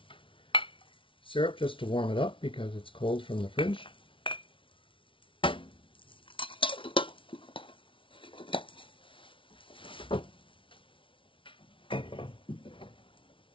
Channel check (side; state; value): right; late; 0.25 ms